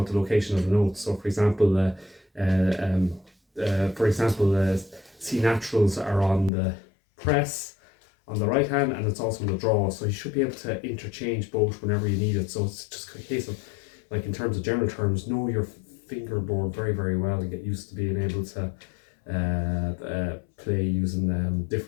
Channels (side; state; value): right; drops out; at 6.5 s